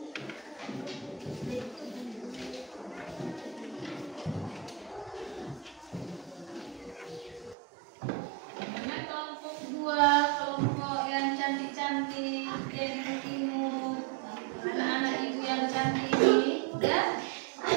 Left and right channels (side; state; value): left; drops out; at 7.6 s